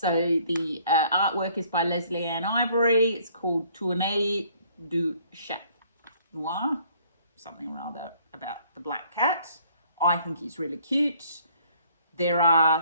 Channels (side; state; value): both; inverted; correlation -0.60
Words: the artwork is by Leslie Ann Ivory. It's called Tournée du Chat Noir, something or other about the black cat. I think he's really cute. There